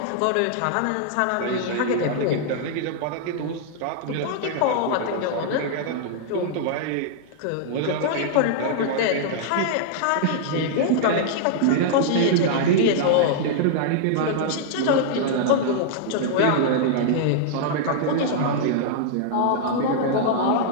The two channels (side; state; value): both; different; correlation -0.01